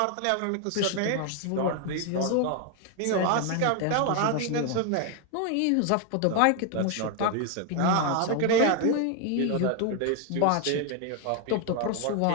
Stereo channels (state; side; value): different; both; correlation 0.01